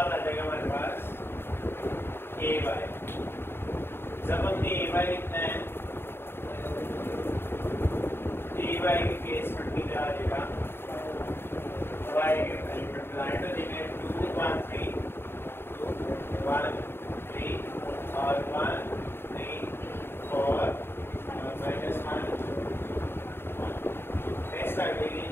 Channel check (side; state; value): right; late; 0.11 ms